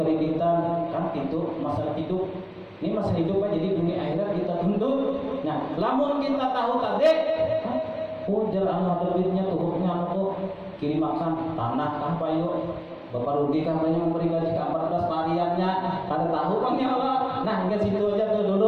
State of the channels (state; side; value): identical; both; correlation 1.00